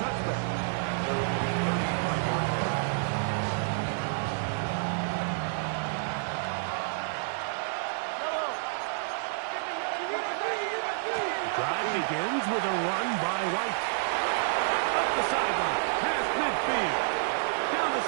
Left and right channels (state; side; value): silent; left; digital silence